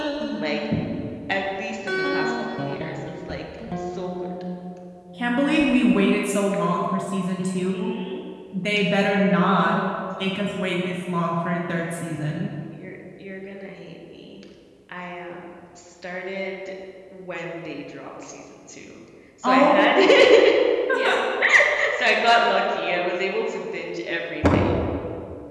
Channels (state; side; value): identical; both; correlation 1.00